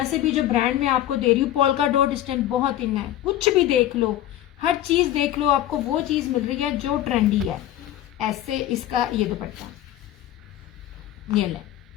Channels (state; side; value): quieter; right; 12.8 dB